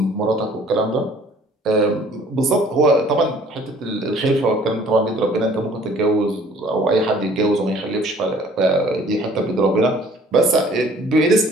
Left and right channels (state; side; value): normal; both; correlation 0.55